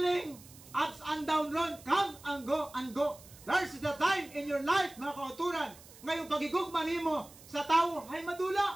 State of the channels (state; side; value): noise; right; hiss, 21 dB below the sound